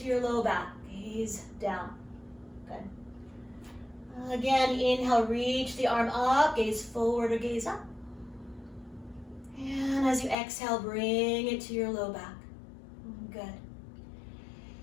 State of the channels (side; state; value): right; drops out; at 10.4 s